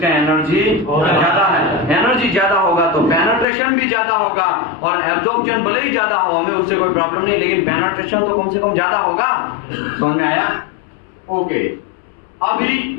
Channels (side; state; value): right; drops out; at 3.5 s